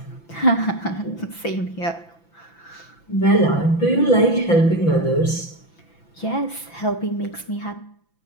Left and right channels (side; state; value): right; late; 5.9 ms